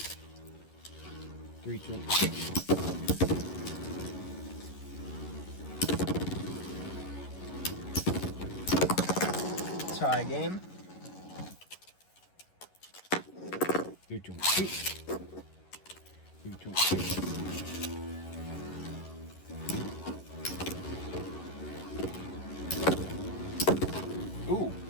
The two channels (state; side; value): late; right; 11 ms